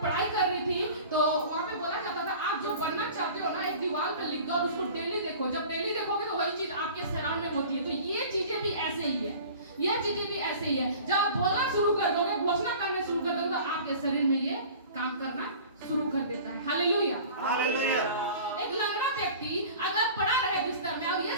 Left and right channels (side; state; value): both; inverted; correlation -0.42